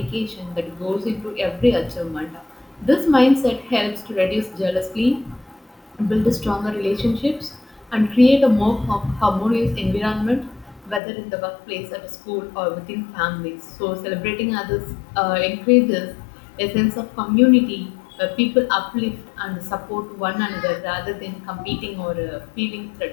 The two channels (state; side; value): drops out; right; at 11.0 s